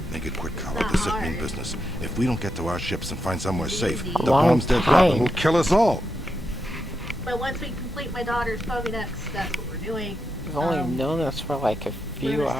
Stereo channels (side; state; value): both; normal; correlation 0.85